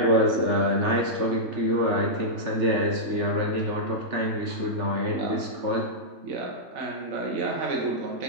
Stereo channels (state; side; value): late; left; 3.4 ms